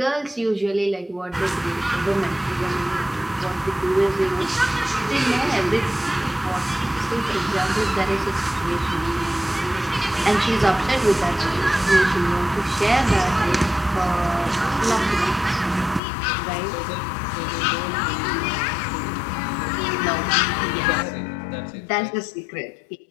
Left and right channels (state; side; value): drops out; right; at 16.0 s